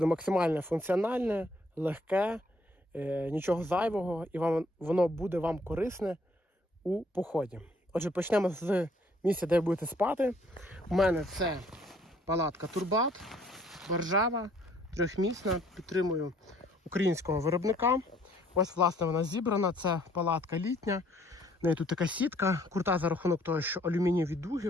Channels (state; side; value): normal; both; correlation 0.63